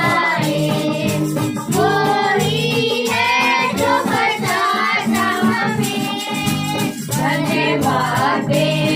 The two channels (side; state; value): both; identical; correlation 1.00